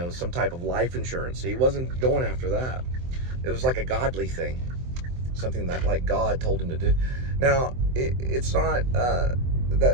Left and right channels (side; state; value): left; late; 23 ms